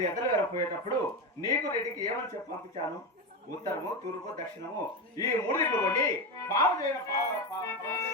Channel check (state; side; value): normal; both; correlation 0.15